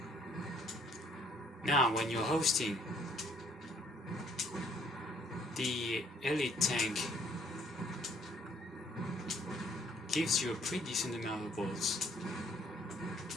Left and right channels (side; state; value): both; normal; correlation 0.63